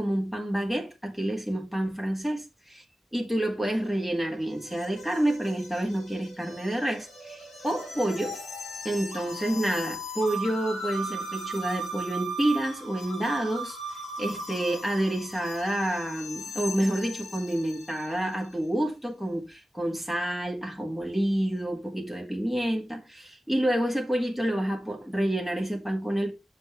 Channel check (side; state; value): both; normal; correlation 0.93